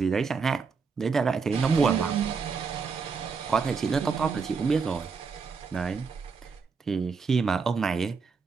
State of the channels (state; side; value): quieter; left; 5.2 dB